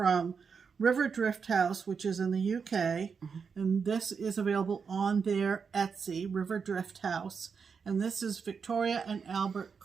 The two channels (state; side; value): quieter; left; 5.9 dB